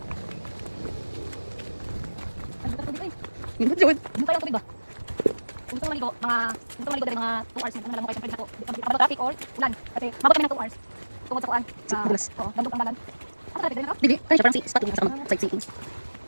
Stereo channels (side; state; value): both; inverted; correlation -1.00